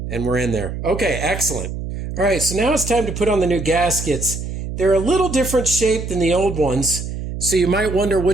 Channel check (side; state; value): right; noise; hum, 6 dB below the sound